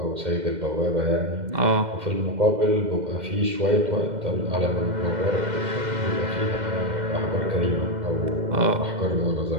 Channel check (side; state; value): left; late; 2.1 ms